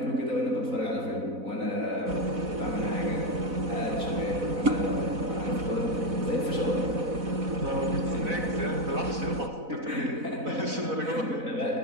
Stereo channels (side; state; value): left; late; 4.0 ms